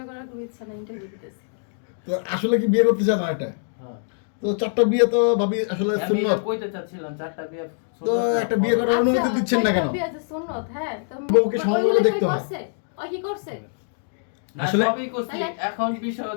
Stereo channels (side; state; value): right; silent; digital silence